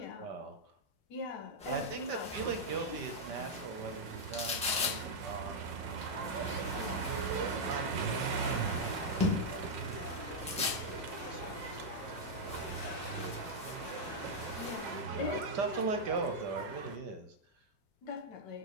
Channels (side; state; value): both; normal; correlation -0.04